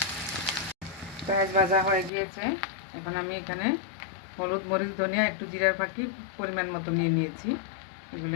পেঁয়াজ ভাজা হয়ে গিয়েছে। এখন আমি এখানে হলুদ, মরিচ, ধনিয়া, একটু জিরার ফাঁকি পরিমাণ মতো নিয়ে নিয়েছি, এগুলি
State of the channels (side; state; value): right; drops out; at 2.1 s